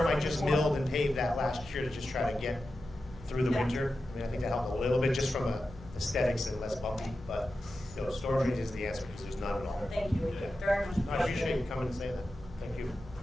I obviously, just we milled want- and paved that last year to just try to get through the Yeah. winter. I mean, I think that helped a little bit just from a aesthetics and less bumpy, but, you know, storage drains is the answer because there's none at all. Thank you. Yeah. Very much. No, I appreciate you coming and saying that. Thank you.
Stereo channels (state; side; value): normal; both; correlation 0.92